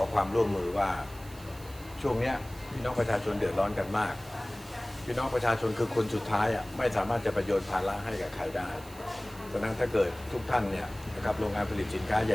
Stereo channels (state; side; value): noise; right; hiss, 20 dB below the sound